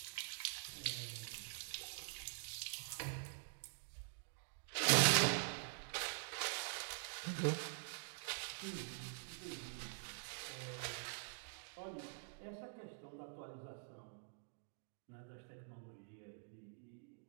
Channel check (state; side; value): silent; left; digital silence